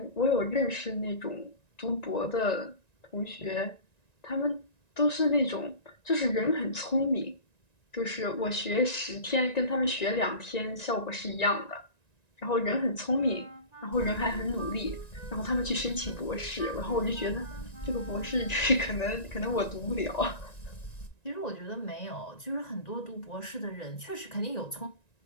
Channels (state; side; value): late; right; 1.9 ms